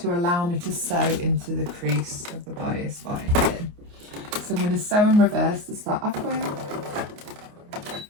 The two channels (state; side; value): late; left; 29 ms